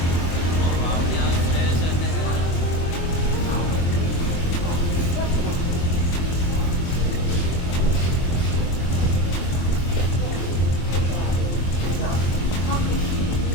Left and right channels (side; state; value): right; late; 24 ms